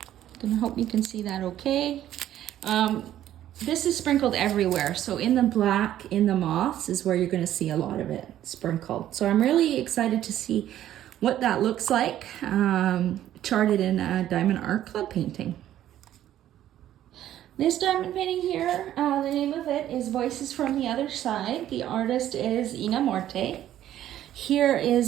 Gonna hope you can see that okay. This is sprinkled everywhere. So in the black, in the moths is where you're gonna see a lot of it sprinkled. So I'm really excited to see what that looks like charted in a Diamond Art Club painting. This diamond painting here, the name of it is Voices from the Other Side. The artist is Ina Morte. Here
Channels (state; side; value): quieter; left; 12.2 dB